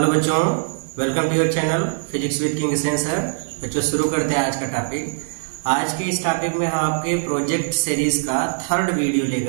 बच्चों, welcome to your channel physics with King Sen sir. बच्चों शुरू करते हैं आज का टॉपिक। आज के इस टॉपिक में हम आपके प्रोजेक्ट सीरीज का थर्ड वीडियो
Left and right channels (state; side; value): silent; left; digital silence